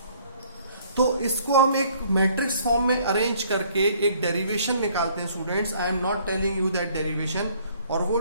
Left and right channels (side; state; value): both; inverted; correlation -0.60